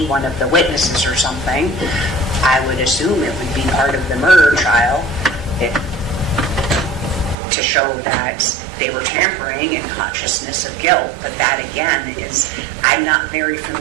one of the witnesses or something. I would assume it would be part of the murder trial to show that they were tampering and consciousness of guilt. But that again is, I'm not very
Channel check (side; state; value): left; drops out; at 7.4 s